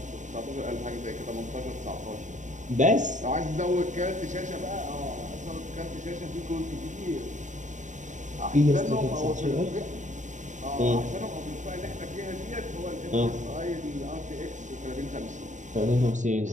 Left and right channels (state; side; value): late; left; 0.36 ms